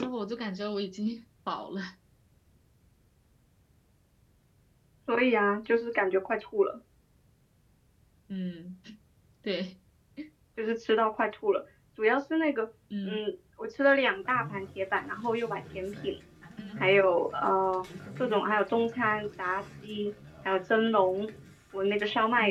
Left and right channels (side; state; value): both; identical; correlation 1.00